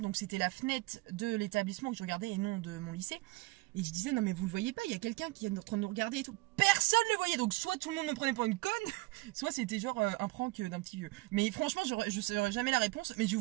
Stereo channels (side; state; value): left; quieter; 22.2 dB